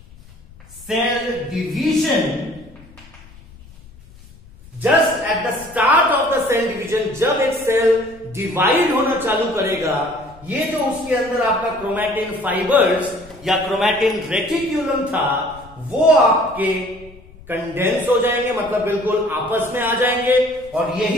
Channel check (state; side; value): noise; left; rumble, 22 dB below the sound